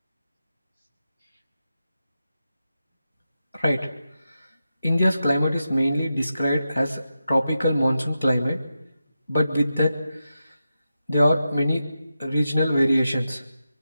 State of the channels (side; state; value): both; inverted; correlation -0.89